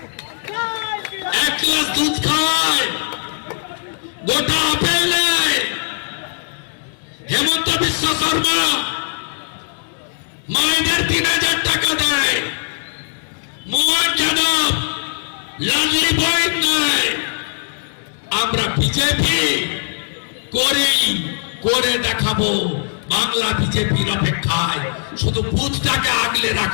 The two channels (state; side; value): silent; right; digital silence